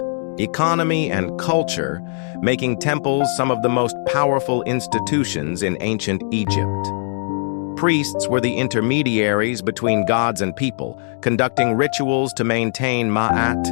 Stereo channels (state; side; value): silent; right; digital silence